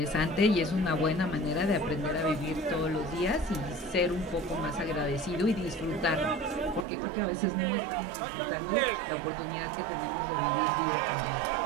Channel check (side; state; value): left; drops out; at 6.9 s